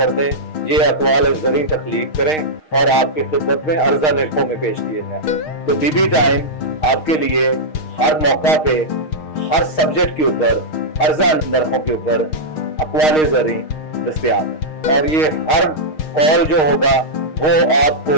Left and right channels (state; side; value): late; right; 6.4 ms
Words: दें, ये अकवाल जरी तख्लीक करें और आपकी खिदमत में अर्जा निर्खों में पेश किए जाए। तो बीबी टाइम आपके लिए हर मौका पे हर सब्जेक्ट के ऊपर अर्जा नरखों के ऊपर अकवाले जरी दस्तयाब है, और ये हर कॉल जो होगा वो आपको